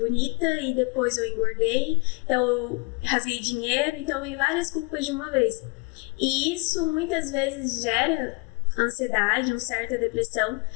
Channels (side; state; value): right; quieter; 30.0 dB